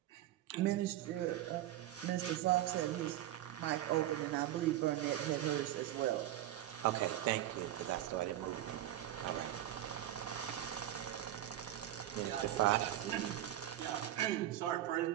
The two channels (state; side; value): quieter; left; 13.0 dB